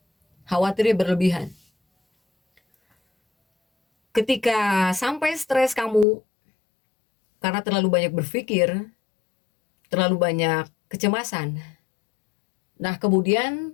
Khawatirnya berlebihan. Ketika sampai stres kamu karena terlalu banyak berpikir, terlalu banyak kecemasan. Nah,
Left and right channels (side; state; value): right; drops out; at 6.1 s